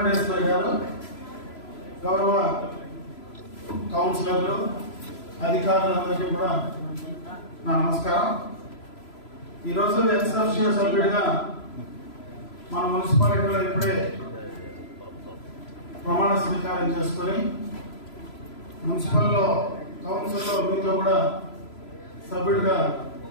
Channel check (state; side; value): late; right; 3.0 ms